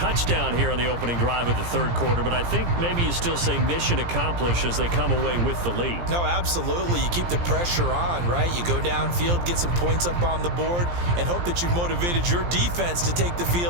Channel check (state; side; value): late; left; 17 ms